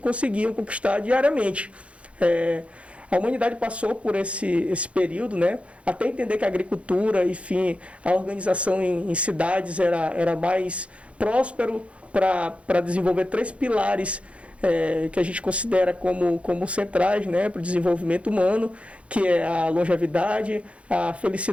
conquistar diariamente. A humanidade passou por esse período, né, até entender que a agricultura, enfim, a organização em cidades era mais próspero para desenvolver 3 pilares que a gente considera como centrais, né, para o desenvolvimento humano, que é a longevidade, a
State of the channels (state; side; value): late; left; 0.062 ms